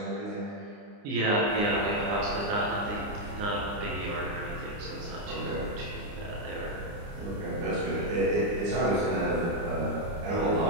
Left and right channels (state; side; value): late; left; 29 ms